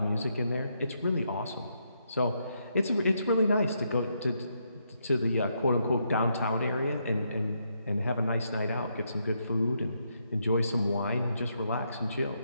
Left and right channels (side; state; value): both; inverted; correlation -0.78